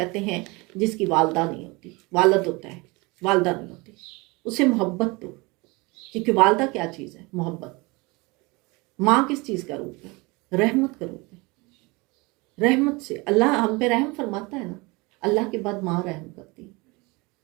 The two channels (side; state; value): left; quieter; 25.6 dB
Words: ہیں جس کی والدہ نہیں ہوتی. والد ہوتا ہے، والدہ نہیں ہوتی. اسے محبت دو، کیونکہ والدہ کیا چیز ہے؟ محبت. ماں کس چیز کا روپ ہے؟ رحمت کا روپ ہے. رحمت سے اللہ ہم پہ رحم فرماتا ہے نا، اللہ کے بعد ماں رحم کرتی ہے.